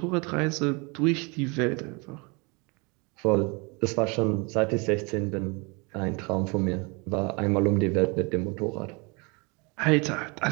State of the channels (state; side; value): quieter; left; 29.5 dB